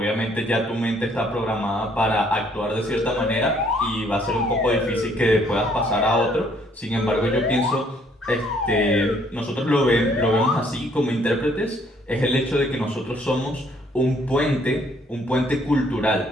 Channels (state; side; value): normal; both; correlation 0.64